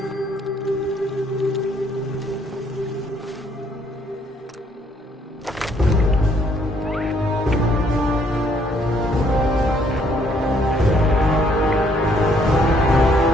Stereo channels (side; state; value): both; normal; correlation 0.66